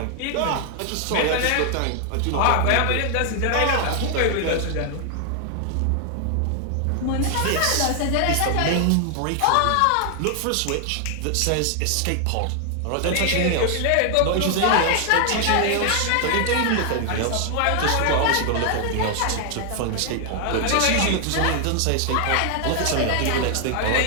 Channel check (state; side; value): different; both; correlation 0.00